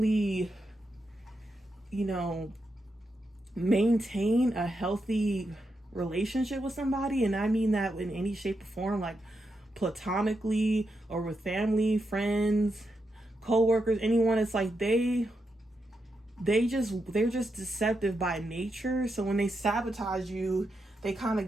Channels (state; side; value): normal; both; correlation 0.85